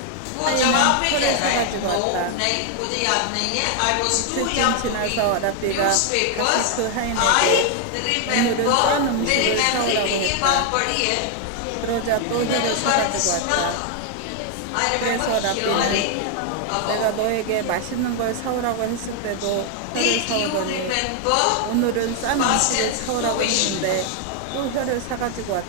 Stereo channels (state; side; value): different; both; correlation 0.00